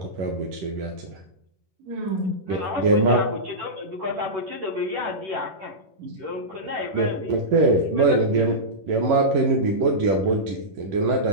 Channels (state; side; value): late; left; 11 ms